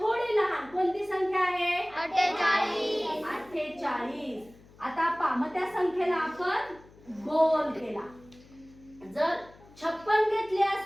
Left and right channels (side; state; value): left; noise; hum, 25 dB below the sound